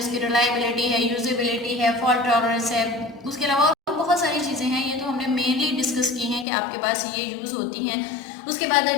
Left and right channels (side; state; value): right; drops out; at 6.5 s